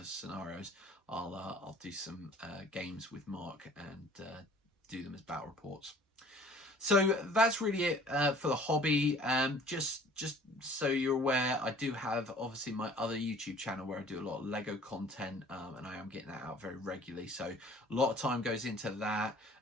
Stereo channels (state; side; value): normal; both; correlation 0.50